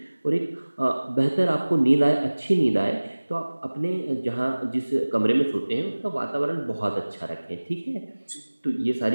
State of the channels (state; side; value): inverted; both; correlation -1.00